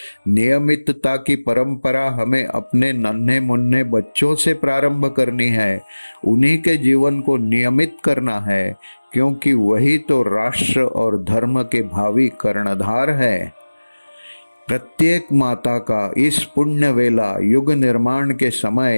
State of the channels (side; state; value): both; inverted; correlation -1.00